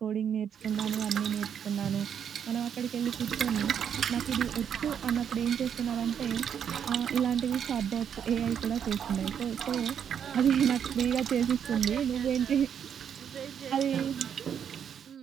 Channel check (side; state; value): left; quieter; 8.3 dB